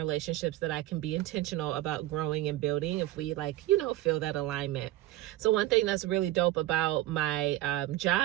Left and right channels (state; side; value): quieter; left; 16.2 dB